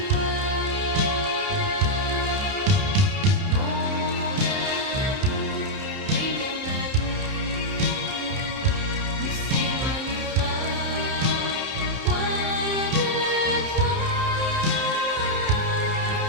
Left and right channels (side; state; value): left; late; 30 ms